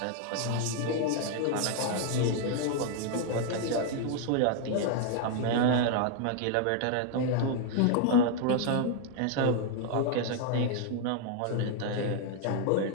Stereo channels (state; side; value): different; both; correlation 0.00